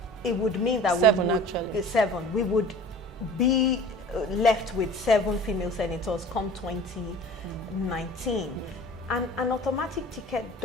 It would mean that we would be left with 7 female senators come 2019. And an automatic ticket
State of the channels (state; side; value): normal; both; correlation 0.43